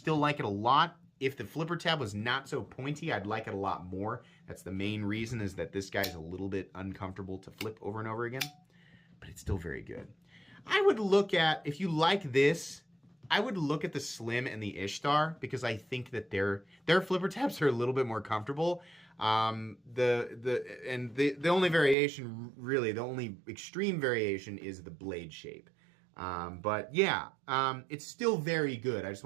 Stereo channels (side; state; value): left; drops out; at 22.0 s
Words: like it a lot. If the flipper tab was not so pointy, I'd like it a lot more. That's the main reason, is that this guy's a little bit uncomfortable to flip over and over again, but it's still very good. I would look at, if you like this, I would look at the Slim and the Ishtar, because I think that their flipper tabs are a little bit more comfortable. The only variation, really, the only extreme variation is the blade shape. But yeah, it's still very good. I just